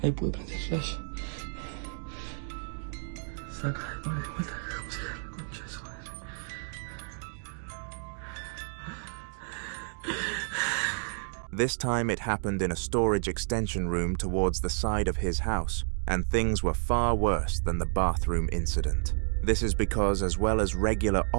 Ahí pude prender el flash. Saca, pone de vuelta. Concha de su madre. This time it happened in a storage extension room towards the side of his house, and things were far worse than the bathroom incident. This is because, as well as regular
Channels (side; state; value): left; silent; digital silence